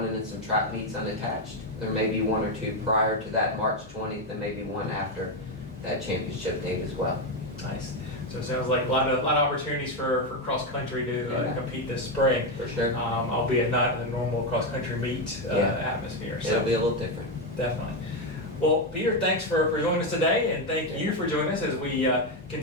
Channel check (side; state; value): both; normal; correlation 0.07